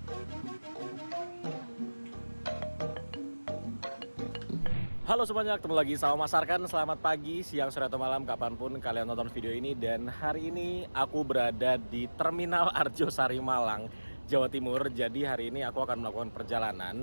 Halo semuanya, ketemu lagi sama Mas Arkan. Selamat pagi, siang, sore, atau malam, kapanpun kalian nonton video ini. Dan hari ini aku berada di Terminal Arjosari Malang, Jawa Timur. Jadi hari ini aku akan melakukan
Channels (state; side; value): inverted; both; correlation -1.00